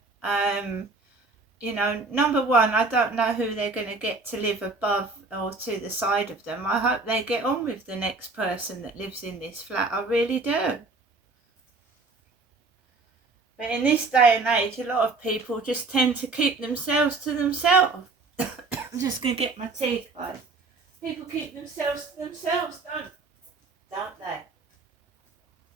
you know, number one, I don't know who they're going to get to live above or to the side of them. I hope they get on with the next person that lives in this flat. I really do. But in this day and age, a lot of people just tend to keep themselves to themselves. I'm just going to get my teeth, guys. People keep themselves to themselves, don't they?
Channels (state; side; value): quieter; left; 3.7 dB